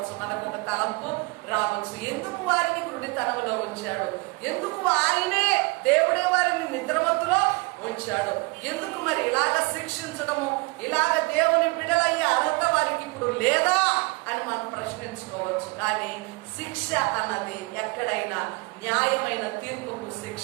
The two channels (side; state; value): left; quieter; 27.7 dB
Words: మనకు ఒక తలంపు రావచ్చు. ఎందుకు వారిని గుడితనంలో ఉంచాడు? ఎందుకు ఆయనే దేవుడే వారిని నిద్రమత్తులో ఉంచాడు? ఎందుకు మరి ఇలాగ శిక్షించడము, ఇలాగ దేవుని బిడ్డలయ్యే అర్హత వారికి ఇప్పుడు లేదా అని మనం ప్రశ్నించుకోవచ్చు. కానీ శిక్ష అన్నది ఎక్కడైనా న్యాయమైన తీర్పుకు